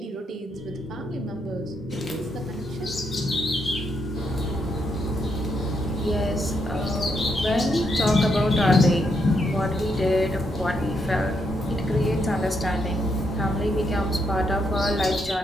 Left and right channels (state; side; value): normal; both; correlation 0.78